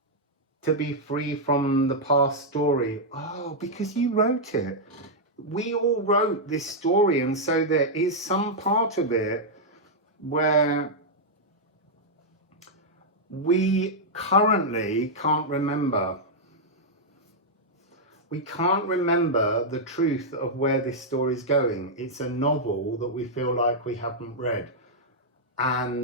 to be free from the past story. Oh, because you wrote it. We all wrote this story, and so there is some part of it where we currently can't remember. We can't remember the truth of where this story is going. It's a novel that we feel like we haven't read.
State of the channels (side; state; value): both; normal; correlation -0.05